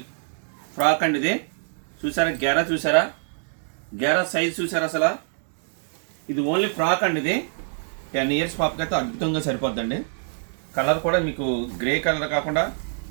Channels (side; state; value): left; silent; digital silence